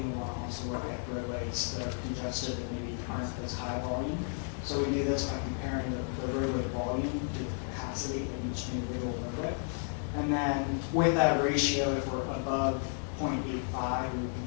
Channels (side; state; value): right; silent; 56 dB below the other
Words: We want to also look at roadways that are congested that maybe aren't as high volume. So we do this by comparing the roadway volume to the capacity of each individual roadway. And then with that ratio, if we're above 0.85, we would